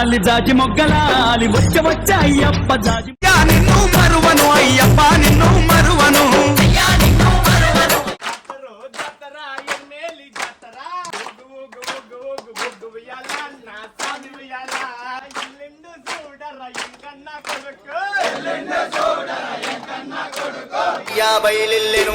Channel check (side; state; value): both; identical; correlation 1.00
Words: వచ్చ అయ్యప్ప జాజి నిన్ను మరువను అయ్యప్ప నిన్ను మరువను బయలెల్లెను